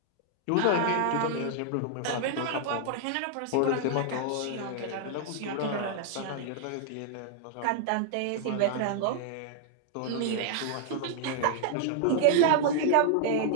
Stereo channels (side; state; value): both; different; correlation -0.01